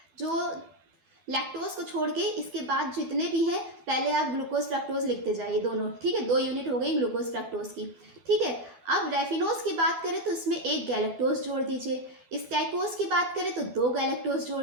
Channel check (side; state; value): left; late; 12 ms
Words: जो लैक्टोज को छोड़ के इसके बाद जितने भी हैं पहले आप ग्लूकोज फ्रैक्टोज लिखते जाइए दोनों। ठीक है, 2 यूनिट हो गई ग्लूकोज फ्रैक्टोज की। ठीक है, अब रेफिनोज की बात करें तो इसमें 1 गैलेक्टोज जोड़ दीजिए, स्टैकोज की बात करें तो 2 गैलेक्टोज जोड़